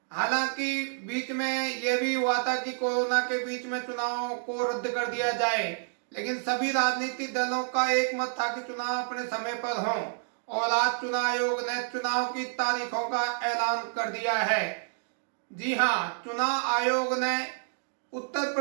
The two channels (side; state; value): left; silent; digital silence